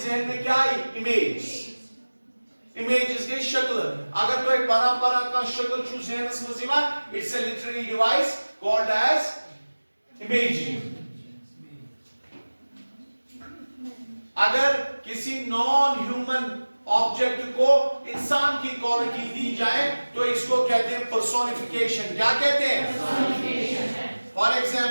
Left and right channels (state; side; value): inverted; both; correlation -1.00